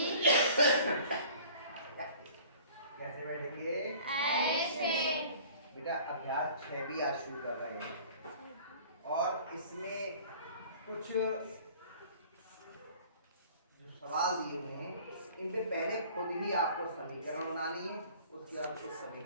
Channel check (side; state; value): both; inverted; correlation -0.48